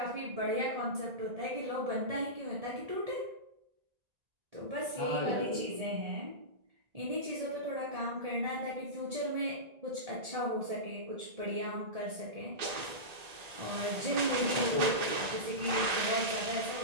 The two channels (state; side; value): late; left; 1.8 ms